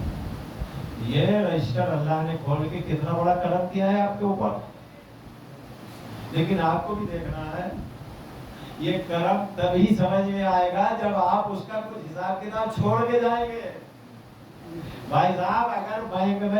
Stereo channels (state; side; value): identical; both; correlation 1.00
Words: یہ رجسٹر اللہ نے کھول کے کتنا بڑا کرم کیا ہے آپ کے اوپر. لیکن آپ کو بھی دیکھنا ہے، یہ کرم تبھی سمجھ میں آئے گا جب آپ اس کا کچھ حساب کتاب چھوڑ کے جائیں گے. بھائی صاحب اگر بینک